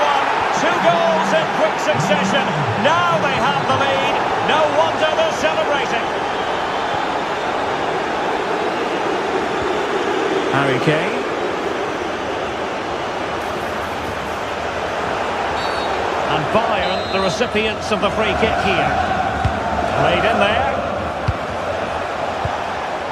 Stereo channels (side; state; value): both; identical; correlation 1.00